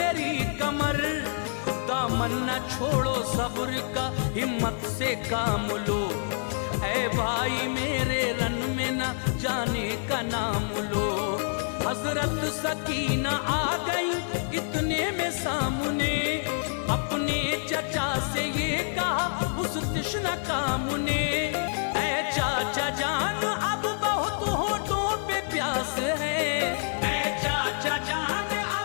कमर, दामन न छोड़ो सब्र का हिम्मत से काम लो, ऐ भाई मेरे रन में न जाने का नाम लो, हजरत सकीना आ गई इतने में सामने, अपने चचा से ये कहा उस तृष्णा काम ने, ऐ चाचा जान अब बहुत होठों पे प्यास है, ऐ चाचा जान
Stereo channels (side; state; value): right; silent; 60 dB below the other